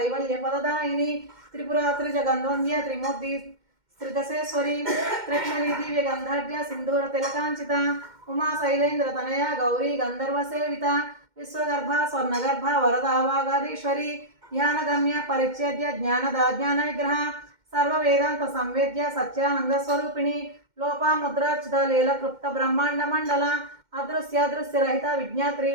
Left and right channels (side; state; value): left; late; 2.1 ms